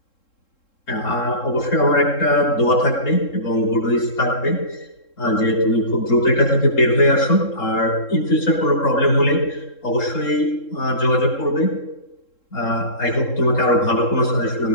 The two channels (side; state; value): right; late; 3.7 ms